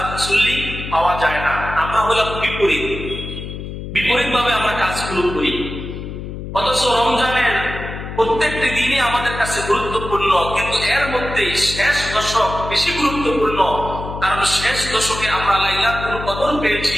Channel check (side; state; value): left; noise; hum, 8 dB below the sound